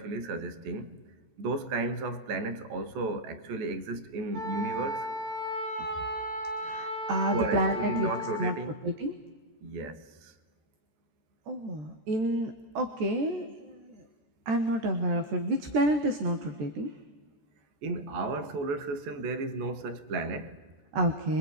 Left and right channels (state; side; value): late; left; 14 ms